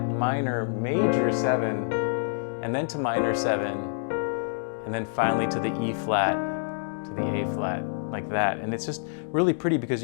major 7, and then to minor 7, and then finally to the E flat, to the A flat, like that. And it's just really pretty because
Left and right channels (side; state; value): right; silent; digital silence